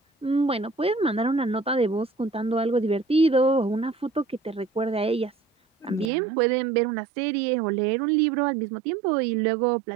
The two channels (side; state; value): left; drops out; at 6.1 s